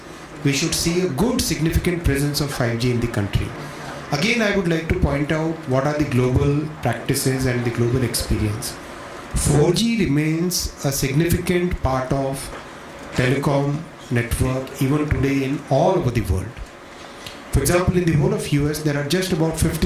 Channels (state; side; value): identical; both; correlation 1.00